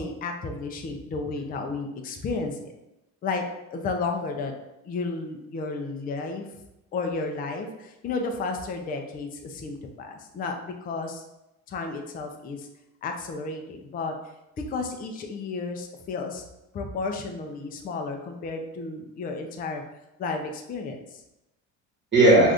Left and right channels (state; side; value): normal; both; correlation 0.19